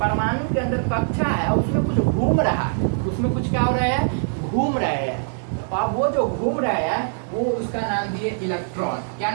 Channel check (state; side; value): silent; left; digital silence